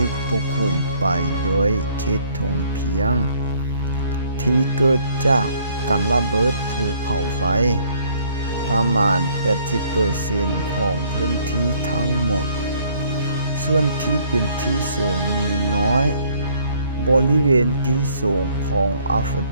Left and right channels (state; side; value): inverted; both; correlation -0.62